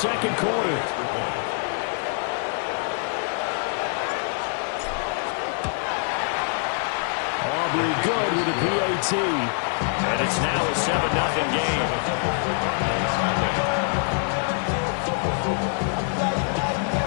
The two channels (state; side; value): silent; right; 57 dB below the other